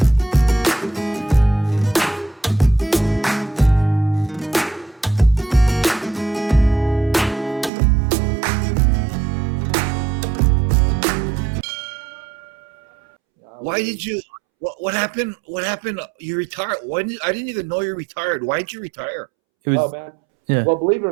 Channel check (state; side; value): drops out; left; at 7.7 s